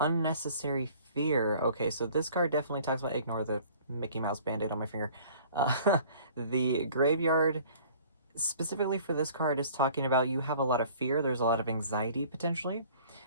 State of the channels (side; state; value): both; inverted; correlation -0.51